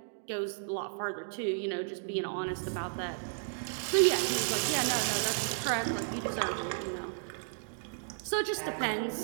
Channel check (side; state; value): left; silent; digital silence